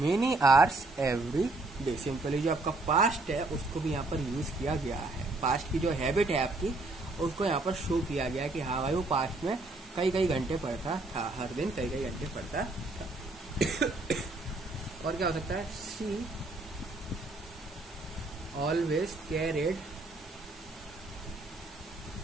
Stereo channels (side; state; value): left; quieter; 3.1 dB